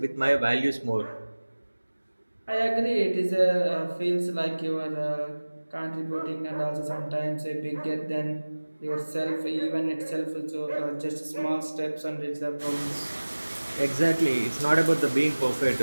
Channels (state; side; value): inverted; both; correlation -1.00